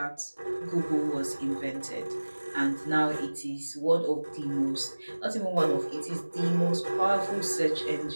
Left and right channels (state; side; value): inverted; both; correlation -1.00